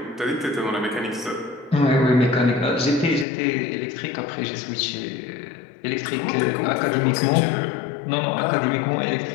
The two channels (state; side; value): drops out; right; at 3.2 s